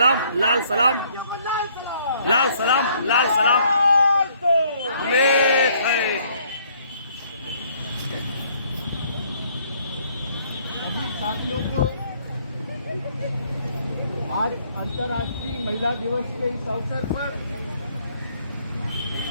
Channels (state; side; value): inverted; both; correlation -0.64